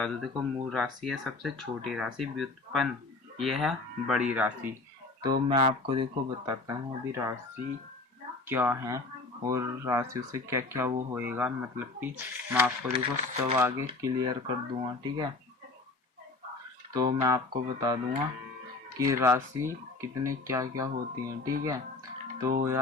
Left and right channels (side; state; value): right; quieter; 3.3 dB